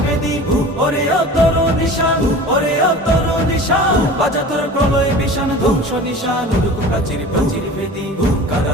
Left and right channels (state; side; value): normal; both; correlation 0.38